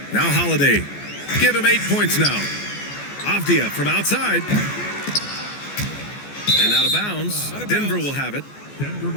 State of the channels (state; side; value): late; right; 14 ms